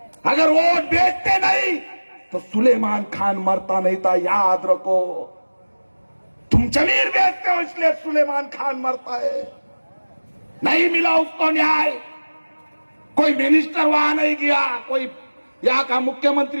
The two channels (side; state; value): both; inverted; correlation -1.00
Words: अगर वोट बेचते नहीं तो सुलेमान खान मरता नहीं था, याद रखो। तुम जमीन बेचते हो इसलिए सुलेमान खान मरता है। नहीं मिला उसको न्याय, कोई मिनिस्टर वहां नहीं गया, कोई यहाँ का